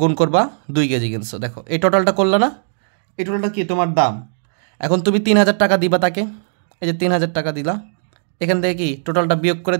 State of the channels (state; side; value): silent; left; digital silence